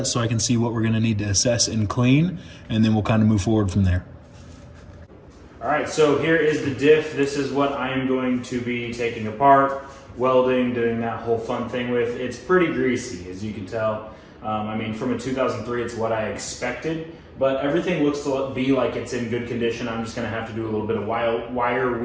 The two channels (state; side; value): identical; both; correlation 1.00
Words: so I can see what we're gonna need to assess and clean, and then we'll kind of move forward from there. All right, so here is the diff. This is what I am going to be taking apart, welding, doing that whole fun thing with. It's pretty greasy, as you can tell. I mean, from a 2003, it's what I expected, but everything looks to be like it's in good condition. I'm just gonna have to do a little bit of wire